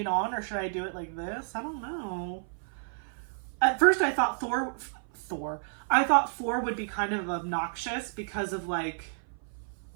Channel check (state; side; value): silent; left; 55 dB below the other